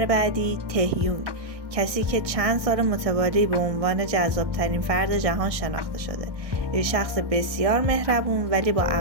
بعدی تهیونگ، کسی که چند سال متوالی به عنوان جذابترین فرد جهان شناخته شده. یه شخص بسیار مهربون ولی با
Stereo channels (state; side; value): late; left; 1.6 ms